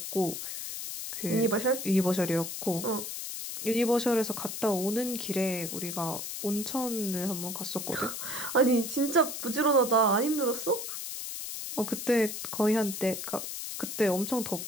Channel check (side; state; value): left; noise; hiss, 6 dB below the sound